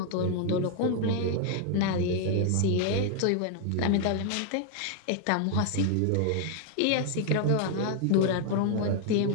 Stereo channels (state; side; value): different; both; correlation 0.01